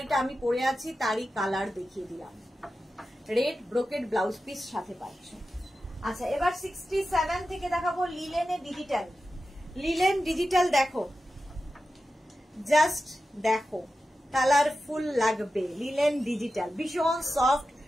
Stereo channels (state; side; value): normal; both; correlation 0.92